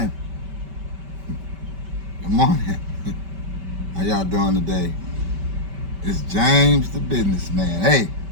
Good morning. How y'all doing today? It's James the businessman. Hey,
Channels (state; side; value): late; left; 5.1 ms